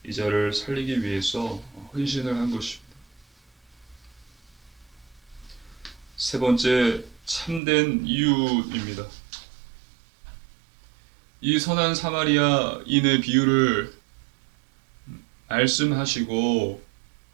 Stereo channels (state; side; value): drops out; left; at 7.6 s